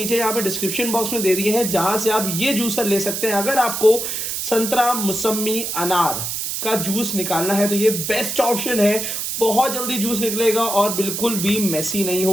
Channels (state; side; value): noise; right; hiss, 3 dB below the sound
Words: यहाँ पे डिस्क्रिप्शन बॉक्स में दे दिए हैं, जहां से आप ये जूसर ले सकते हैं। अगर आपको संतरा, मौसमी, अनार का जूस निकालना है तो ये बेस्ट ऑप्शन है। बहुत जल्दी जूस निकलेगा और बिल्कुल भी मेसी नहीं